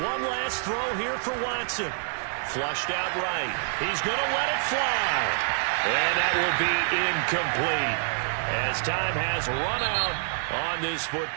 One last throw here for Watson. Flushed out right. He's going to let it fly. And that will be incomplete as time has run out on this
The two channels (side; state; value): left; silent; digital silence